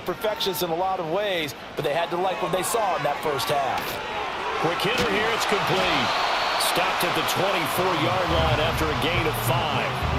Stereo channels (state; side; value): identical; both; correlation 1.00